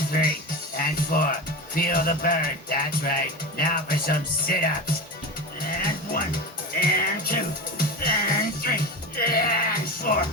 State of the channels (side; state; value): both; normal; correlation 0.26